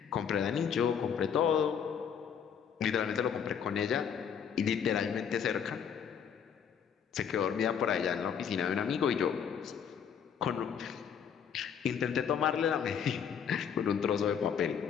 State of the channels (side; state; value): right; quieter; 7.7 dB